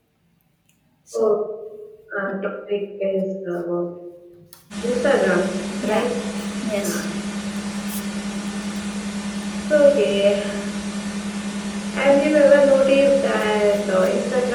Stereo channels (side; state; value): both; identical; correlation 1.00